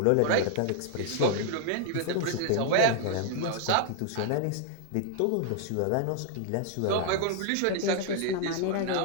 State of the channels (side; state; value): both; different; correlation 0.00